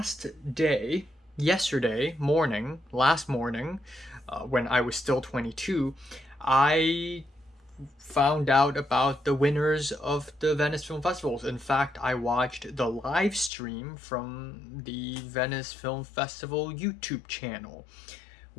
morning, when I was still 22, I found out about the winners of the Venice Film Festivals. In fact, I watched the live stream from the Venice Film Festival YouTube channel,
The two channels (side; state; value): right; drops out; at 13.5 s